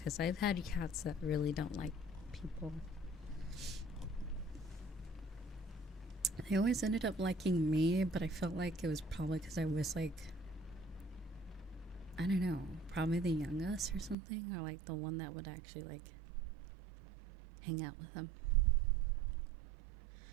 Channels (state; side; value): drops out; left; at 14.2 s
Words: I've had cats that really don't like people. They always ended up liking me, but I felt like it was probably because I was like, I don't know, probably the youngest or something, or like the one that would actually like hang out with them.